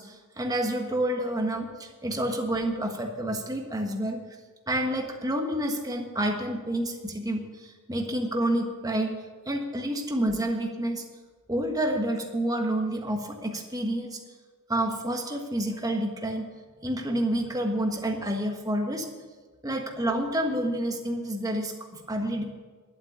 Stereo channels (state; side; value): normal; both; correlation 0.62